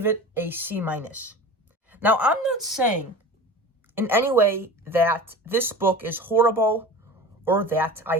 it a C-. Now, I'm not saying in any way that this book is horrible or that I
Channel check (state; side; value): normal; both; correlation 0.35